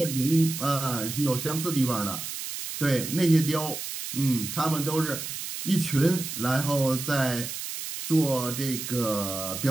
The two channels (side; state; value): right; noise; hiss, 7 dB below the sound